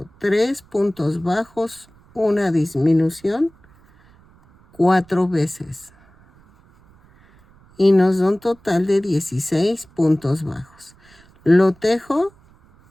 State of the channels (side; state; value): right; noise; rumble, 29 dB below the sound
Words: 3 puntos bajos, una disminución, 4 veces. Y nos da un total de 16 puntos bajos. Lo tejo,